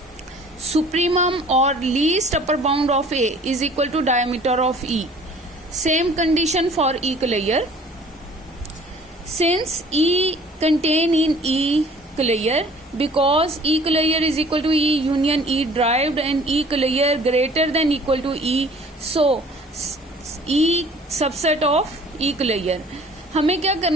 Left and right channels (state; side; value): normal; both; correlation 0.51